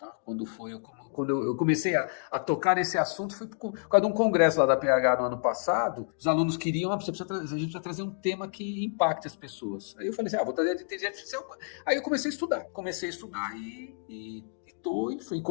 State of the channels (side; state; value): right; silent; digital silence